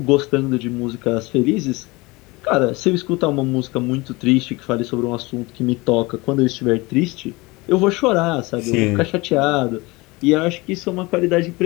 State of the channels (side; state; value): right; quieter; 23.5 dB